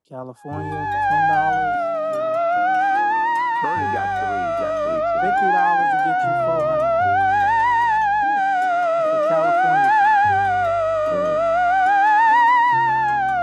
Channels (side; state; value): both; identical; correlation 1.00